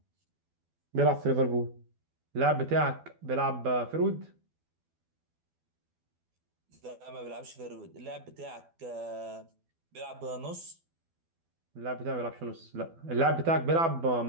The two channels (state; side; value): late; left; 12 ms